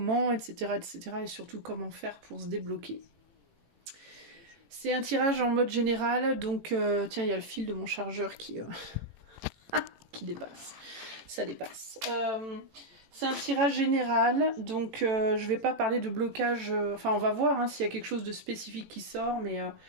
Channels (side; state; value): left; late; 18 ms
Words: etc., etc. Et surtout comment faire pour se débloquer. C'est un tirage en mode général, donc tiens, il y a le fil de mon chargeur qui dépasse. Ça dépasse. C'est un tirage général, donc je vais pas parler de blocage. Enfin, on va voir hein, s'il y a quelque chose de spécifique qui sort, mais